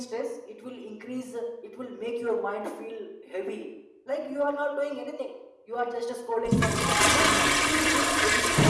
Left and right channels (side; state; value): both; identical; correlation 1.00